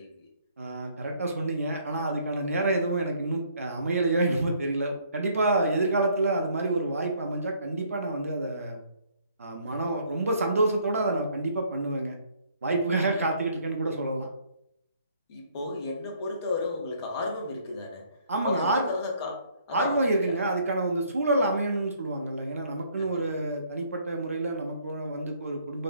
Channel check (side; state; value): both; inverted; correlation -0.63